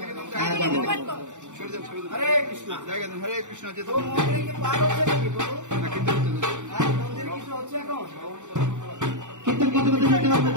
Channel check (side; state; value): left; late; 0.85 ms